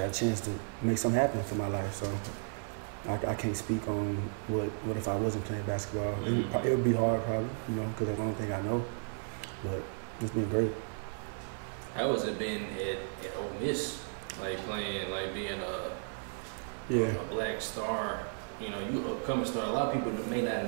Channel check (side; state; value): left; silent; digital silence